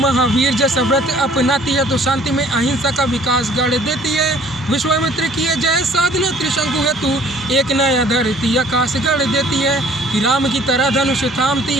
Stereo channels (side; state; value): both; normal; correlation 0.55